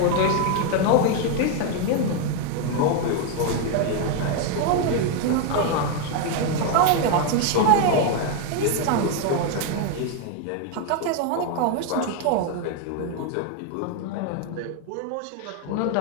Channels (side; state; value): both; different; correlation 0.01